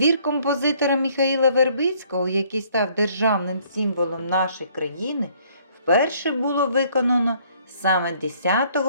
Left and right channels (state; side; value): inverted; both; correlation -0.62